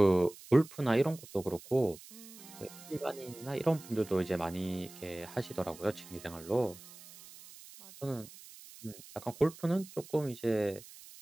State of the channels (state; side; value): noise; right; hiss, 18 dB below the sound